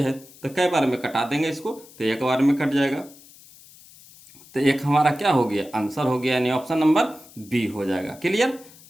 तो कई बार में कटा देंगे इसको, तो एक बार में कट जाएगा। तो एक हमारा क्या हो गया, आंसर हो गया, यानी ऑप्शन नंबर बी हो जाएगा। क्लियर।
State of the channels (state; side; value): noise; left; hiss, 23 dB below the sound